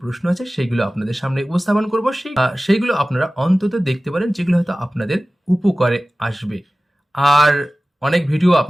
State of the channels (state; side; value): normal; both; correlation 0.96